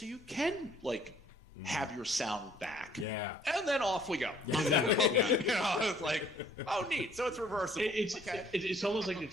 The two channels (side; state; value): both; normal; correlation 0.59